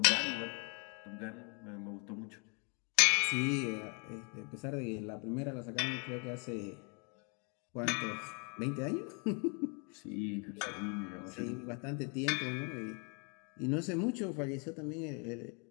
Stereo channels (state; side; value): quieter; right; 35.9 dB